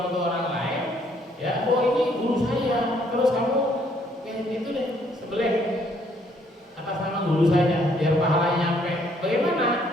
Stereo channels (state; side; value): normal; both; correlation 0.66